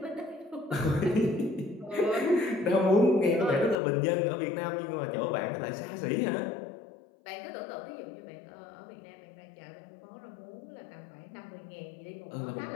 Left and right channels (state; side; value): drops out; right; at 3.8 s